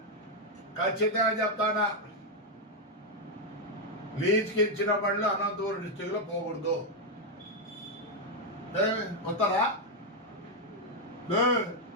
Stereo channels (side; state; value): both; normal; correlation 0.01